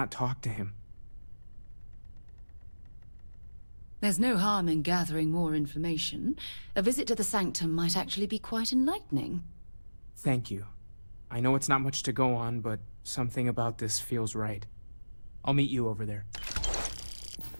talk to him? There's no harm in gathering more information. A visit to the Sanctum might actually be quite enlightening. Thank you. I know it's not much to go on, but something about this feels right. I'll meet you over there.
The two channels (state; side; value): inverted; both; correlation -1.00